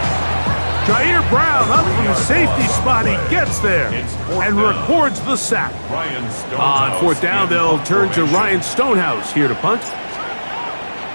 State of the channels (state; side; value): inverted; both; correlation -1.00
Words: Jair Brown up from the safety spot. He gets there and records the sack. On fourth down, they'll turn to Ryan Stonehouse here to punt.